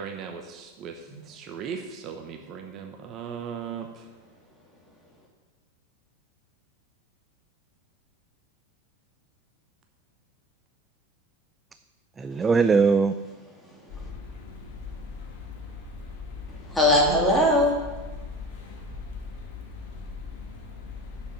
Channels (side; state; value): both; normal; correlation 0.42